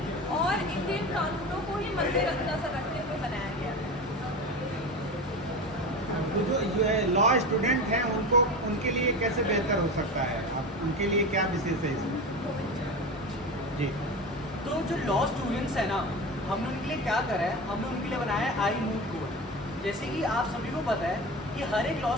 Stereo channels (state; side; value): normal; both; correlation 0.27